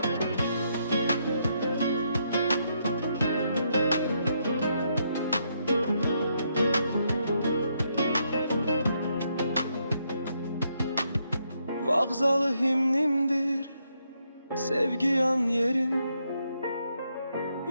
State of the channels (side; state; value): both; inverted; correlation -0.77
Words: Vağzalı himnimdir sevgi yan yerim.